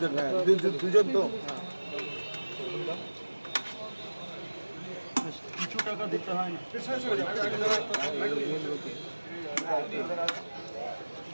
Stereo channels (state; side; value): inverted; both; correlation -1.00